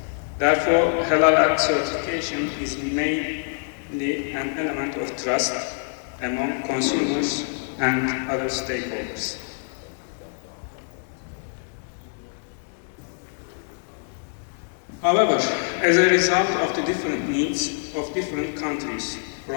Therefore, halal certification is mainly an element of trust among consumers and other stakeholders. However, as a result of the different needs of different countries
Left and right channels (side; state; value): right; silent; digital silence